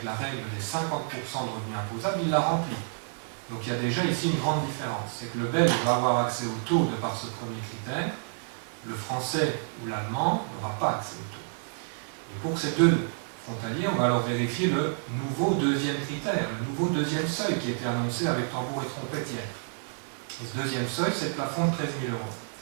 la règle des 50% de revenus imposables, il la remplit. Donc il y a déjà ici une grande différence. C'est que le belge va avoir accès au taux de par ce premier critère, le français ou l'allemand n'aura pas accès au taux. Et pour ces deux frontaliers, on va alors vérifier le nouveau deuxième critère, le nouveau deuxième seuil qui a été annoncé avec tambour et trompette hier. Et ce deuxième seuil, c'est le plafond de 13 000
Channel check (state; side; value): silent; left; digital silence